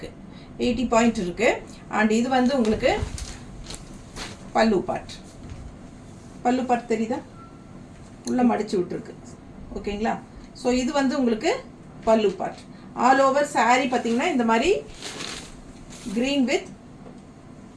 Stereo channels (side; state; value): both; identical; correlation 1.00